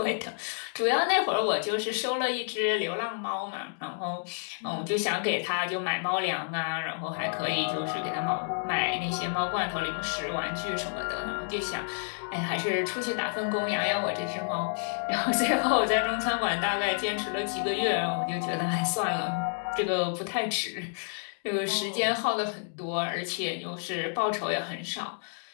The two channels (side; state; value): right; silent; digital silence